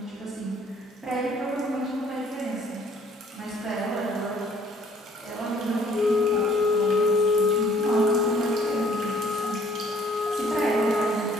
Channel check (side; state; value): both; normal; correlation 0.60